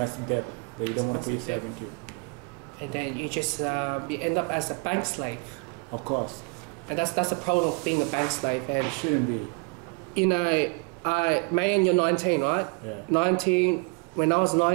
debt that you don't want to put yourself into. And then you just you end up as a bank slave. Of course. And that's the problem of being a bank slave. And it shouldn't be. May, and you're 19, right? Yeah. 19. When I was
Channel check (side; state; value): left; quieter; 33.7 dB